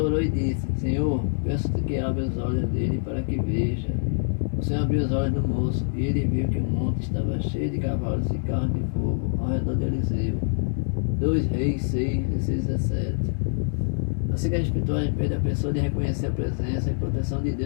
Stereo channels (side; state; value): right; silent; digital silence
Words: orou e disse: Senhor, peço-te que abra os olhos dele para que veja. O Senhor abriu os olhos do moço, e ele viu que o monte estava cheio de cavalos e carros de fogo ao redor de Eliseu. 2 Reis 6, 16 a 17. A cegueira espiritual impede a pessoa de reconhecer a presença e proteção de